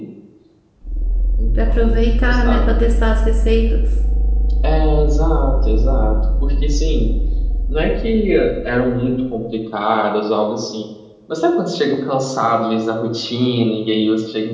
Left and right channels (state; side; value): identical; both; correlation 1.00